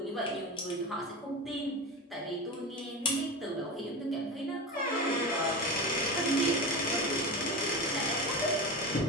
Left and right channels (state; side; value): normal; both; correlation 0.23